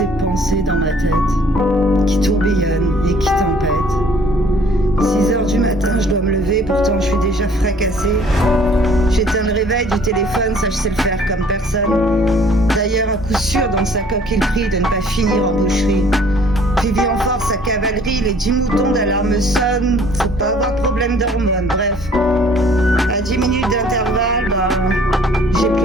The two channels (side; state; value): both; normal; correlation 0.56